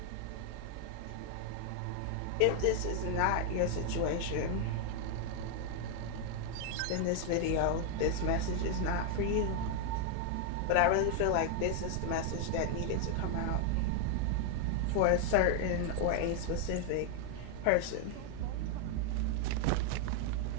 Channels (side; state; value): both; different; correlation 0.00